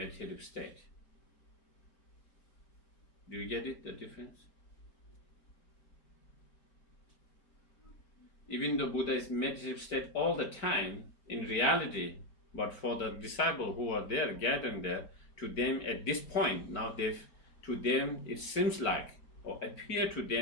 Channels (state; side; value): late; right; 4.4 ms